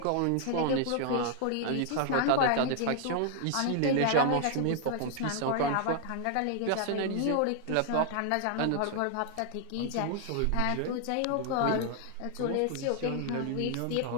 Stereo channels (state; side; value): different; both; correlation 0.00